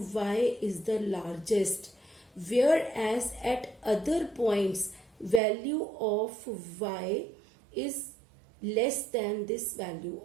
y is the largest, whereas at other points value of y is less than this value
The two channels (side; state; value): left; drops out; at 5.4 s